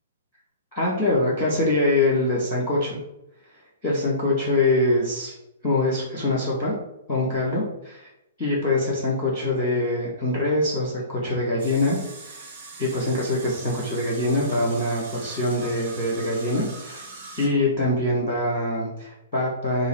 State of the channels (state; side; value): inverted; both; correlation -0.35